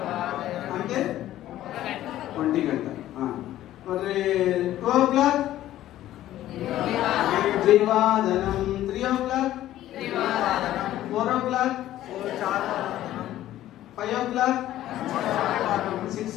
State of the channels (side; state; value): right; quieter; 13.6 dB